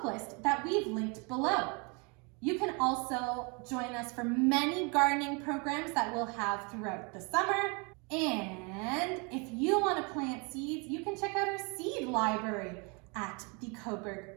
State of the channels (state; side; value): quieter; left; 31.8 dB